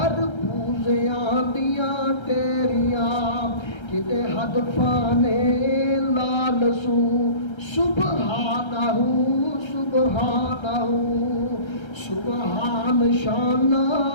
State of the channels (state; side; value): late; right; 1.3 ms